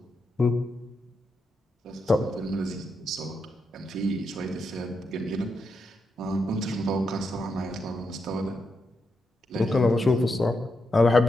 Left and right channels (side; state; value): both; normal; correlation 0.84